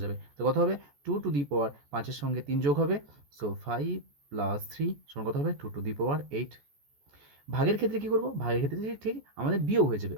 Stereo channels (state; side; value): late; left; 14 ms